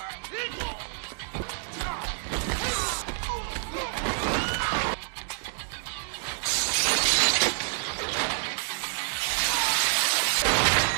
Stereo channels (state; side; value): silent; left; digital silence